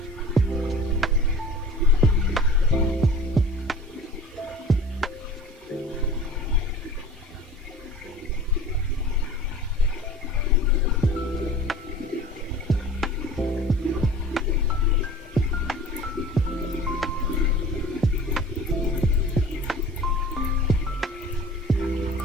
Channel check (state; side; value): normal; both; correlation 0.41